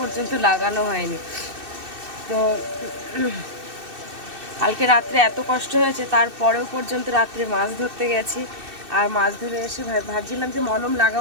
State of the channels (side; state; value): left; late; 2.6 ms